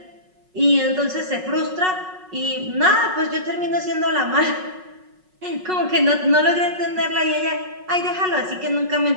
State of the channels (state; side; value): late; left; 5.4 ms